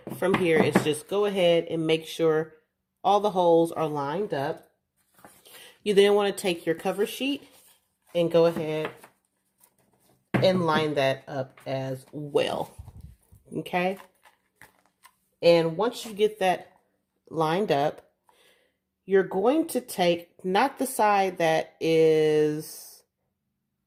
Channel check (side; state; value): both; identical; correlation 1.00